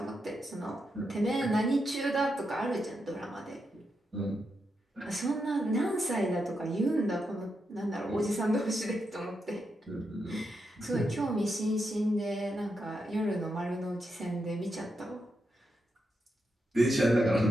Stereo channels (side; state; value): both; normal; correlation 0.84